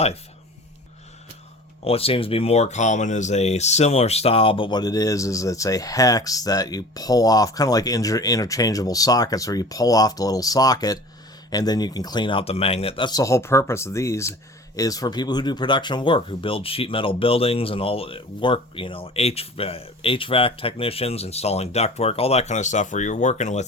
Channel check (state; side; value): normal; both; correlation 0.42